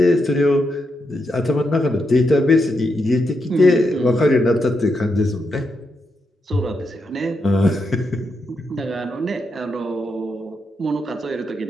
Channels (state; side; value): normal; both; correlation 0.83